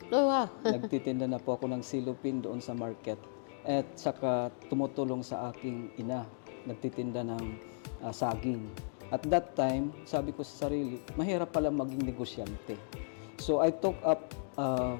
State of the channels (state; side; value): silent; right; digital silence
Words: Oh, wow. Nagtitinda na po ako ng silupin doon sa market. At saka tumutulong sa aking ina. Nagtitinda ng saging. At that time, sabi ko sa sarili, mahirap pala maging negosyante. So I took up